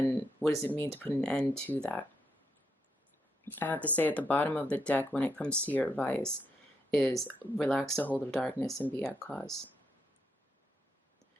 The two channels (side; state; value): both; normal; correlation 0.80